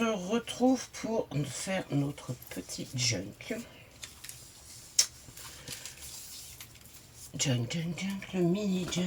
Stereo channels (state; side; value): identical; both; correlation 1.00